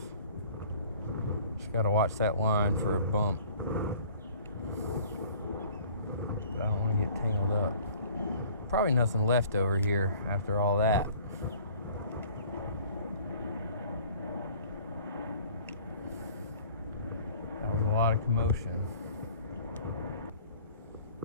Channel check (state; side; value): inverted; both; correlation -0.51